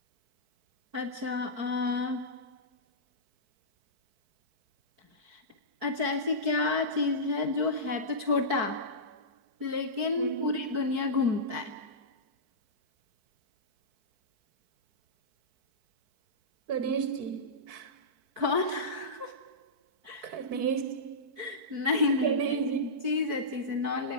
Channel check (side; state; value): left; late; 4.6 ms